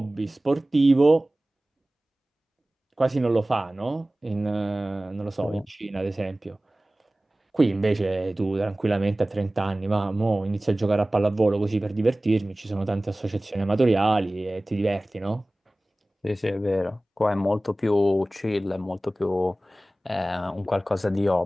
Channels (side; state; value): both; normal; correlation 0.98